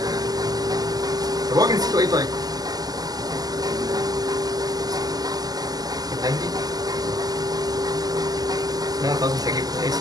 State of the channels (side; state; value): left; late; 0.18 ms